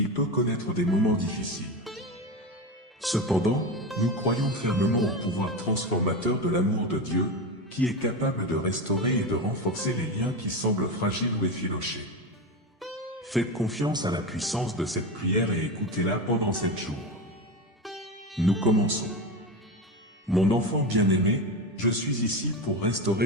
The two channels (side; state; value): both; normal; correlation 0.20